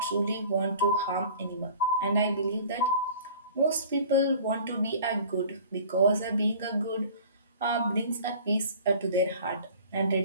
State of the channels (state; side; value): inverted; both; correlation -0.45